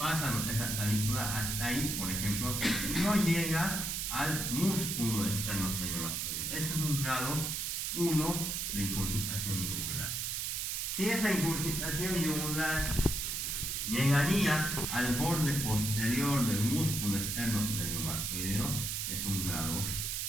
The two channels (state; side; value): noise; right; hiss, 1 dB below the sound